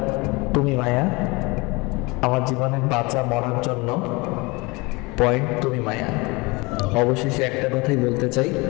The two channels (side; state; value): right; quieter; 25.5 dB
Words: তুমি মায়া, আমার জীবনের বাঁচা মরার জন্য পয়েন্ট তুমি মায়া। অবশেষে একটা কথাই বলতে চাই,